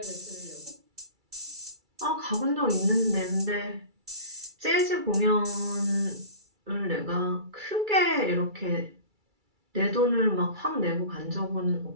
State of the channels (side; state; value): left; late; 2.3 ms